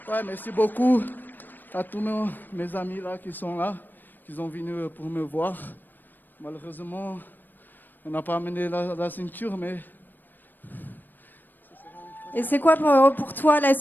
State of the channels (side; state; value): right; late; 0.091 ms